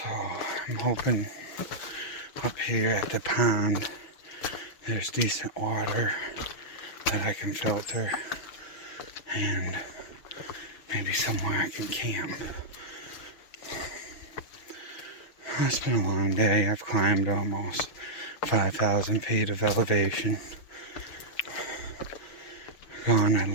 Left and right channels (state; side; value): late; right; 6.7 ms